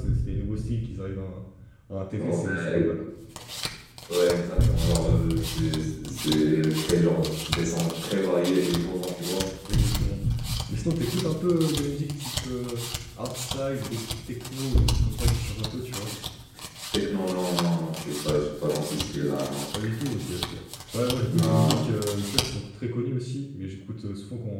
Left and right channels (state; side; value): identical; both; correlation 1.00